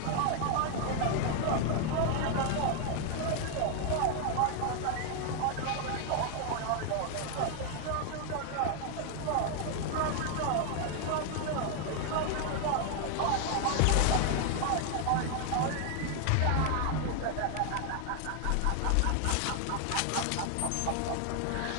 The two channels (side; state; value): both; different; correlation 0.00